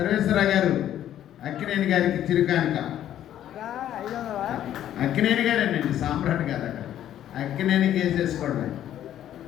గారు అక్కినేని గారికి చిరు కానుక. అక్కినేని గారేనండి, సామ్రాట్ గారు అక్కడ అక్కినేని కేసేసుకోవడం.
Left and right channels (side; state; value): right; quieter; 11.4 dB